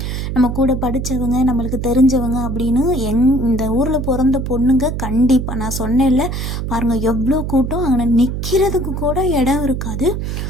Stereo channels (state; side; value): noise; right; hum, 3 dB below the sound